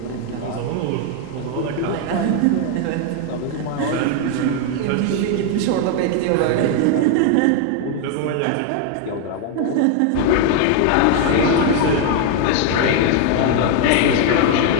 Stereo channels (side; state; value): both; different; correlation 0.01